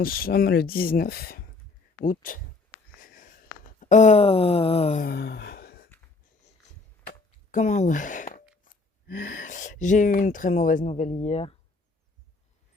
sommes le 19 août. Euh, Comment J'ai eu une très mauvaise nouvelle hier.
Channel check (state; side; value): quieter; right; 3.7 dB